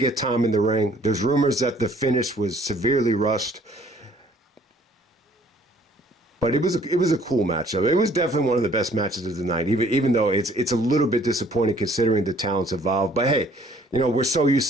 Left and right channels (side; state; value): both; normal; correlation 0.59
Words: get time in the ring. There's rumors that the finish was severely rushed. But it was a cool matchup. It was definitely one of the best matches of the night, even though it's a little bit disappointing considering the talents involved. But hey, we're so used